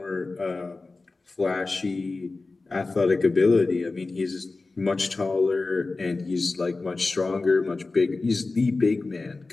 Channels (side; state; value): right; quieter; 3.6 dB